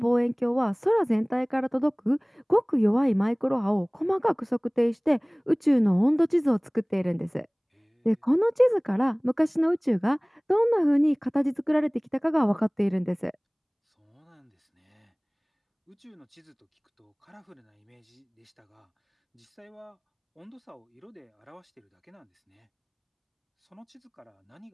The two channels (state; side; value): identical; both; correlation 1.00